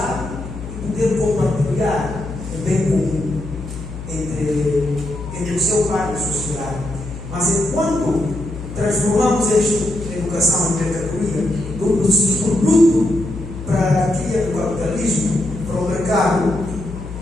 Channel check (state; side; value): noise; left; hum, 10 dB below the sound